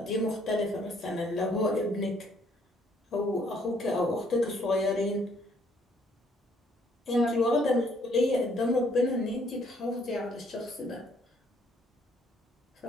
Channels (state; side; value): normal; both; correlation 0.65